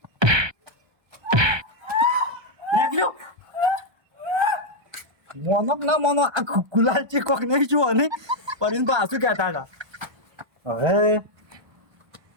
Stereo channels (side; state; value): left; late; 1.3 ms